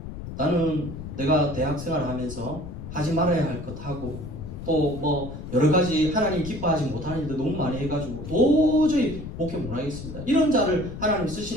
나는 내가 대학 생활을 하면서 하지 말아야 할 것 하고 또 뭐 여러 가지 하나님 기뻐하지 못하는 일도 너무 많이 해가지고 도저히 목회 못하겠습니다. 이런 자를 하나님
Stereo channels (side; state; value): left; noise; rumble, 10 dB below the sound